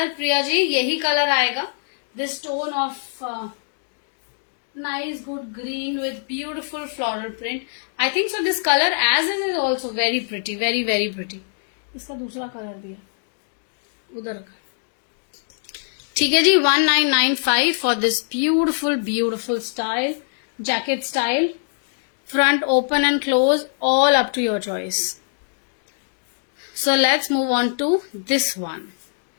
प्रिया जी यही कलर आएगा. This tone of nice good green with beautiful floral print. I think so this color as is also very pretty, very very pretty. इसका दूसरा colour भी है उधर का. ठीक है जी, 1995 for this beautiful beautiful style, jacket style, front open and close, all up to your choice. So let's move on to this one.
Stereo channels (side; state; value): right; silent; digital silence